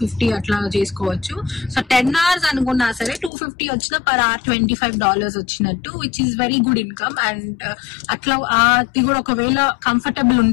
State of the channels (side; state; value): right; drops out; at 3.3 s